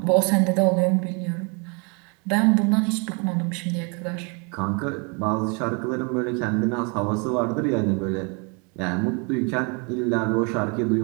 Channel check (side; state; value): left; quieter; 33.6 dB